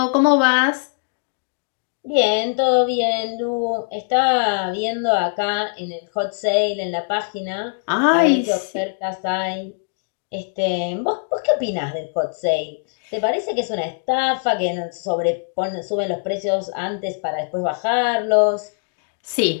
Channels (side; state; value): right; silent; digital silence